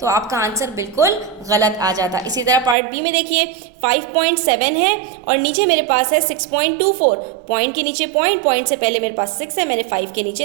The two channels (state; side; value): drops out; left; at 2.8 s